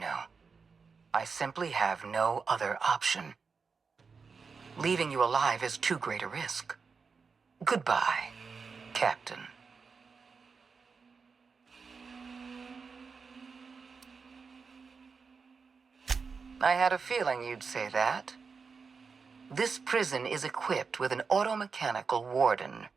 I simply have no other option. Leaving you alive is too great a risk. Goodbye, Captain. I had a feeling you'd say that. This prison is equipped with an automechanical warden.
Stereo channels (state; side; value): quieter; left; 5.1 dB